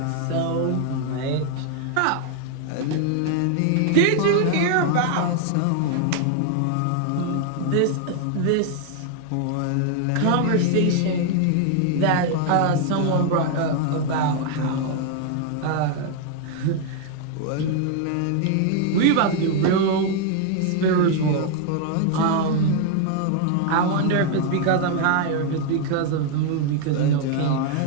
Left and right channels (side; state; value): both; different; correlation 0.00